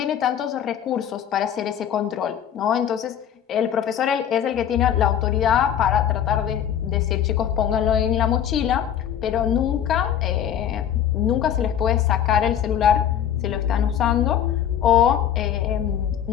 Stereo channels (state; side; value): quieter; right; 9.7 dB